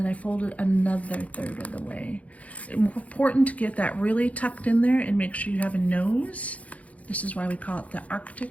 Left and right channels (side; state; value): right; late; 0.067 ms